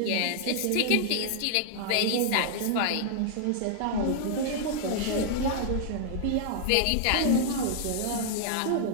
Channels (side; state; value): both; different; correlation -0.01